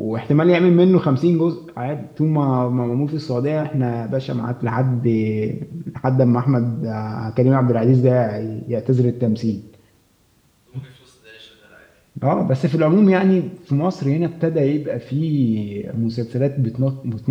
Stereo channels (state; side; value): identical; both; correlation 1.00